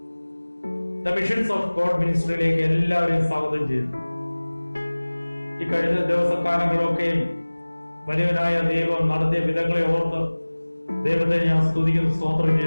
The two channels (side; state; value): both; inverted; correlation -1.00